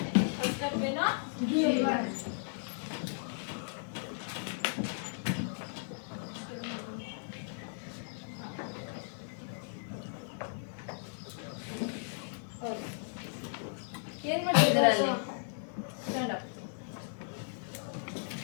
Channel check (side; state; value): right; silent; digital silence